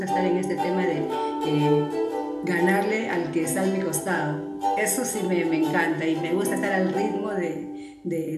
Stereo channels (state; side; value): identical; both; correlation 1.00